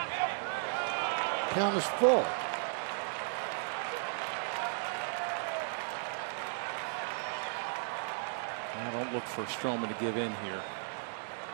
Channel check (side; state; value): left; silent; digital silence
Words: Count is full. Now don't look for Stroman to give in here.